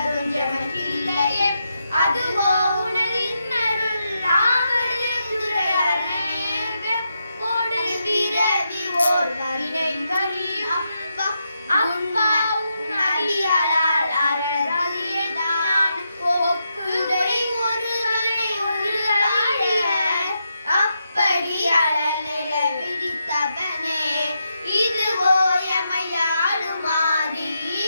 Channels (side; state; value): both; inverted; correlation -0.84